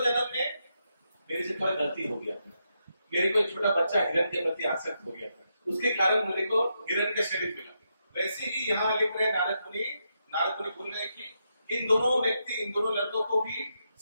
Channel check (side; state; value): both; inverted; correlation -0.83